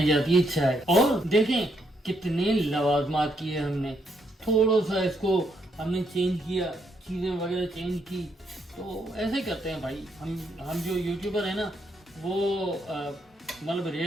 जाती है चाय, और देखें कितने लवाजमात किए हमने। थोड़ा सा इसको हमने चेंज किया, चीज़ें वगैरह चेंज की। तो ऐसे करते हैं भाई हम जो यूट्यूबर है ना, वो मतलब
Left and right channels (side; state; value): both; normal; correlation 0.75